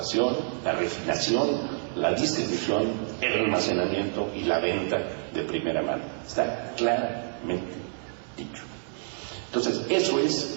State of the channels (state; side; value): silent; left; digital silence